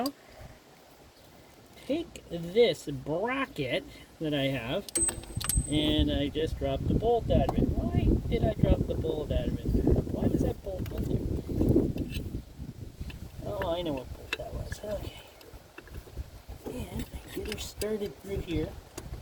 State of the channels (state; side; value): identical; both; correlation 1.00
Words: take this bracket that I have, and I just dropped the bolt out of it. Why did I drop the bolt out of it? Why was that bolt in there? Oh, I know what bolt that was. Okay. And I get her started through here.